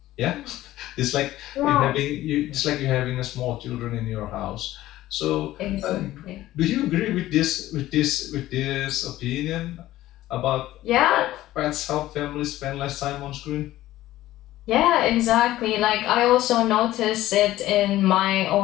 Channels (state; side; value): quieter; right; 15.2 dB